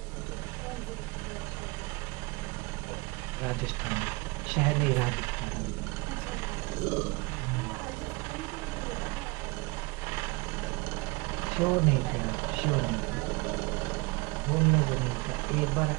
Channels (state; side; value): quieter; left; 25.2 dB